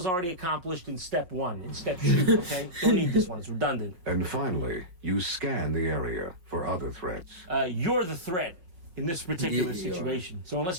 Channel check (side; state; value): left; late; 5.5 ms